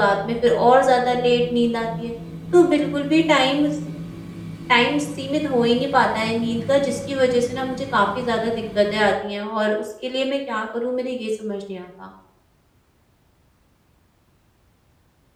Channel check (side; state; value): both; identical; correlation 1.00